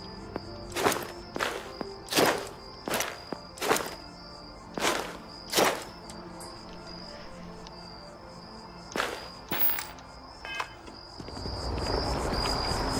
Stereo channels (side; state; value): both; identical; correlation 1.00